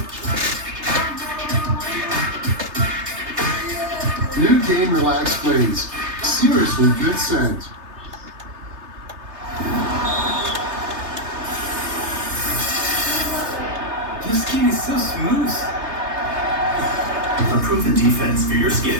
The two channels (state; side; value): late; left; 3.3 ms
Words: New game Relax Flings. Seriously good scent. Your skin is so smooth. A proven defense for your skin.